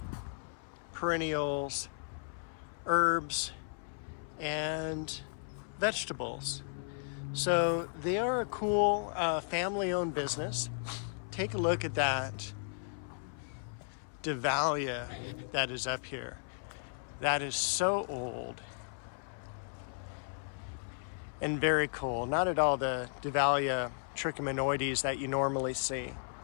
perennials, herbs, and vegetables. So they are a cool family-owned business. Take a look at that Dahlia that is up here. That is so old and very cool. Not at all the Dahlia trichomanoides that you normally see,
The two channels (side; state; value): right; silent; 54 dB below the other